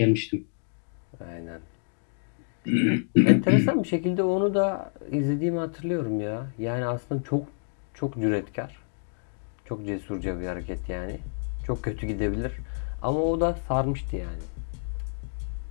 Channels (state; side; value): silent; right; digital silence